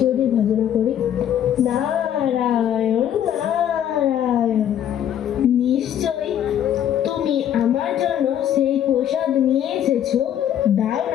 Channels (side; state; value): right; quieter; 10.3 dB